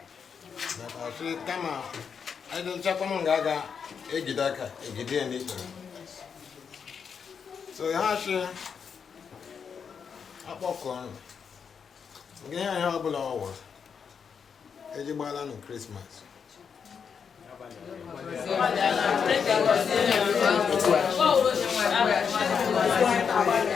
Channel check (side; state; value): right; quieter; 6.6 dB